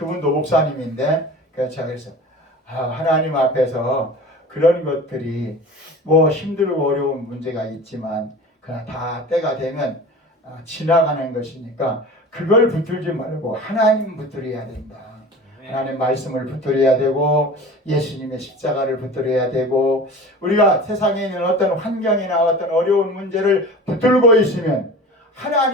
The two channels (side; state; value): both; normal; correlation 0.37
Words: 목사님인데 그래서 제가 그랬어요. 하나님 앞에서 그런 것들이 힘들고 어려운 문제가 있지만 그러나 다 때가 되면 지나가는 것이니까 그걸 붙들지 말고 하나님 붙들어야 된다. 하나님 말씀을 붙들어야 되고 예수님의 십자가를 붙들어야 되고 우리가 세상에 있는 어떤 환경이나 어떤 어려운 문제를 붙들고 있으면